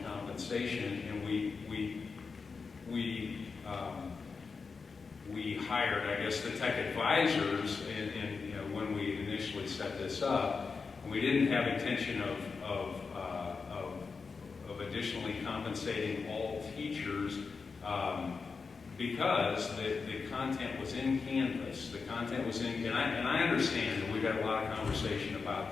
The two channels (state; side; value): quieter; right; 4.9 dB